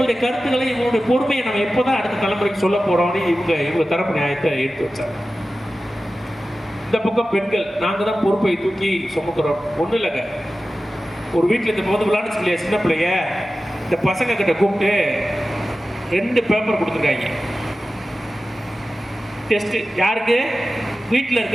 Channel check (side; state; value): both; normal; correlation 0.95